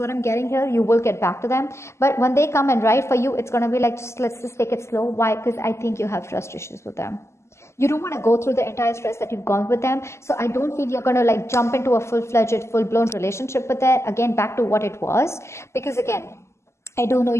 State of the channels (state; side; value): late; right; 0.13 ms